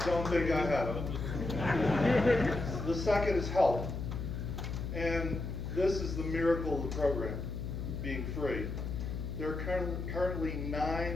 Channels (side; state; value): left; noise; hum, 4 dB below the sound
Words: Don't think I have them. The second is help. And this is the miracle of the program being free. There are currently